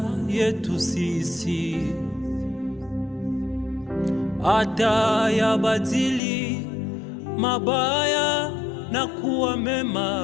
yetu sisi, hata yabadili mabaya na kuwa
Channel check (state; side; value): drops out; right; at 6.2 s